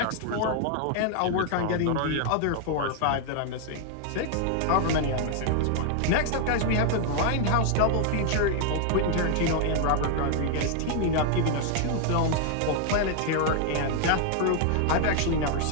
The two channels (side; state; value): both; different; correlation 0.00